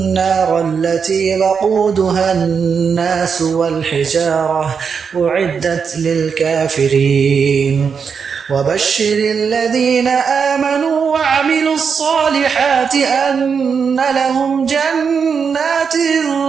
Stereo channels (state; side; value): quieter; left; 6.2 dB